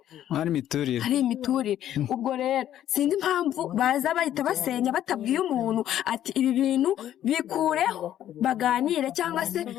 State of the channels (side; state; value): right; quieter; 11.5 dB